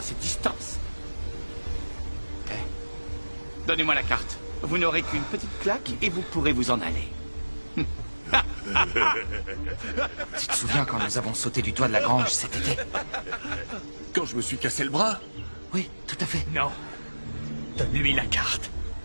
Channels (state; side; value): inverted; both; correlation -1.00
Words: cette distance. Eh, donnez-moi la carte. Vous n'aurez qu'une petite claque et vous pourrez vous en aller. Tu te souviens quand nous avons sauté du toit de la grange cet été? Quand je me suis cassé le bras? Oui, tout à fait. Non. Donne-lui la carte.